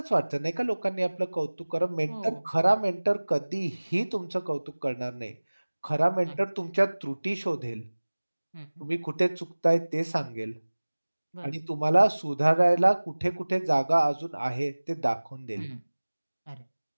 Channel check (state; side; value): inverted; both; correlation -1.00